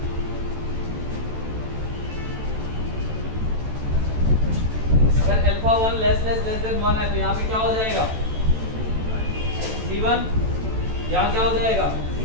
अगर अल्फा 1 लेस देन 1 है तो यहाँ पे क्या हो जाएगा? C1। यहाँ क्या हो जाएगा?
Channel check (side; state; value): left; late; 14 ms